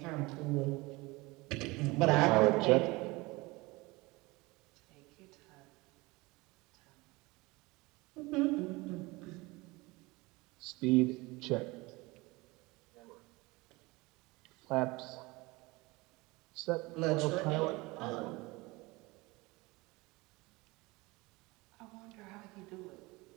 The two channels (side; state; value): left; quieter; 23.1 dB